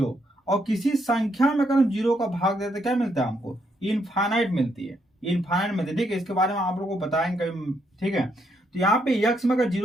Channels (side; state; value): both; normal; correlation 0.75